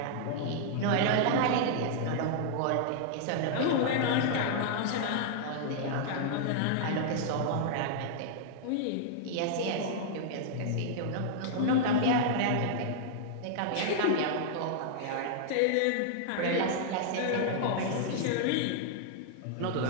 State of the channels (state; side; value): different; both; correlation -0.01